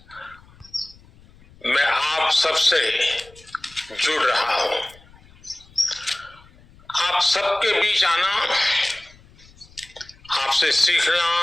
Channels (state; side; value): noise; left; rumble, 26 dB below the sound